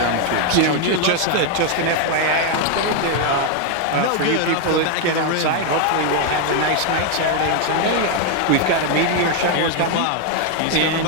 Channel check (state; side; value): different; both; correlation 0.01